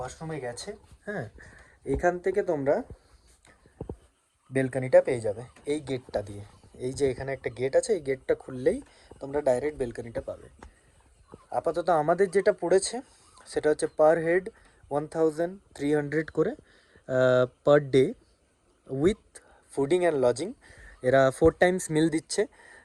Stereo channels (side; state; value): both; identical; correlation 1.00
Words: গেছে। হ্যাঁ, এখান থেকে তোমরা বেলকনিটা পেয়ে যাবে এই গেটটা দিয়ে। এই যে এখানে একটা গেট আছে, এই গেটটা খুললেই তোমরা ডাইরেক্ট বেলকনিটা পাবে। আপাতত আমাদের যেটা পড়েছে সেটা হচ্ছে পার হেড 1300 করে per day, with fooding and lodging. এরা 4 টাইমস মিল দিচ্ছে,